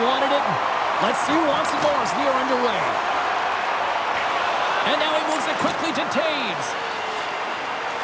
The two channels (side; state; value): both; identical; correlation 1.00